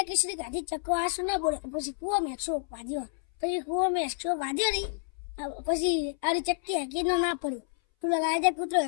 ખીચડી ખાધી. ચક્કો આસું ના બોલે. પછી કુવો મેં 100 વાગ્યો. પછી કુવો મેં 100 વાગ્યો નહીં. પછી આરી ચક્કી હકી ના પડી. તું રાજા કૂતરો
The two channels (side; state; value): right; silent; 58 dB below the other